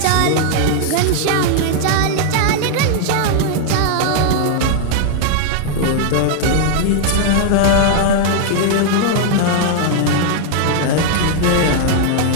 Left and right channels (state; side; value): different; both; correlation 0.00